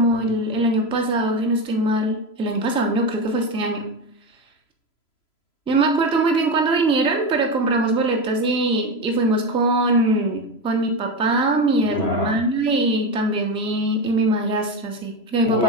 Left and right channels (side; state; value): right; late; 3.0 ms